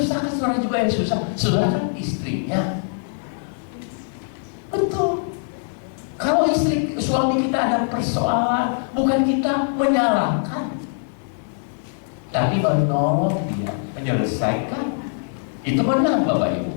kan saudara juga yang susah. Saudara kan istrinya. Betul. Kalau suami kita ada persoalan, bukan kita menyalahkan, tapi menolong dia menyelesaikan. Itu menang Bapak Ibu.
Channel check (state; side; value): silent; right; digital silence